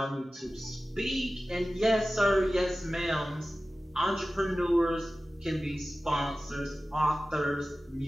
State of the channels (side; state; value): both; normal; correlation 0.96